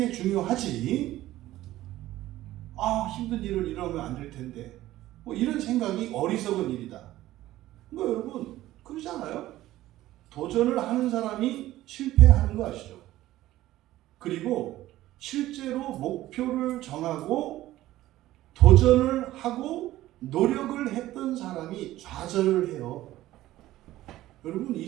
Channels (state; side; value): quieter; left; 15.3 dB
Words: 중요하지. 힘든 일을 일어나면 안 될 텐데. 이런 생각이 어리석은 일이다. 여러분 그러지 않아요? 도전을 하는 사람이 실패하는 거 아시죠? 그리고 실제로 목표를 정하고 도전을 하고 노력을 했던 사람이 좌절을 해요. 여러분 이